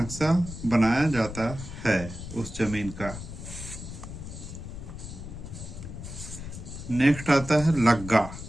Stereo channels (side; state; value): left; noise; rumble, 10 dB below the sound